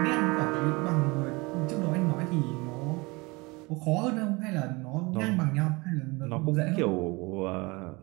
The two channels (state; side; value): quieter; left; 25.2 dB